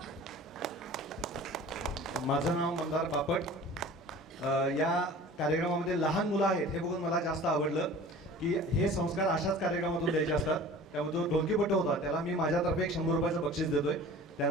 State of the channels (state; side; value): normal; both; correlation 0.43